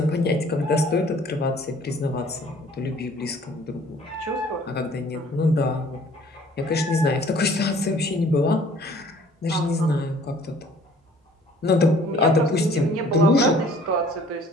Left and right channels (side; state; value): both; normal; correlation 0.54